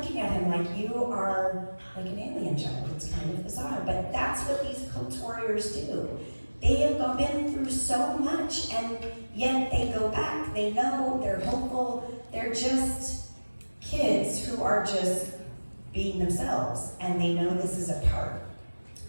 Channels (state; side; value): inverted; both; correlation -1.00